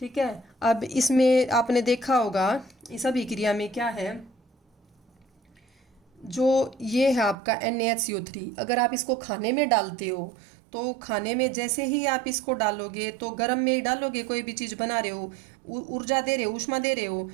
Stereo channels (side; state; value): left; drops out; at 7.4 s